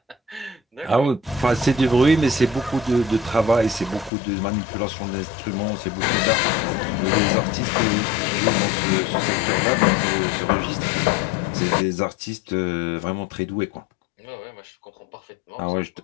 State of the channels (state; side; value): drops out; right; at 4.1 s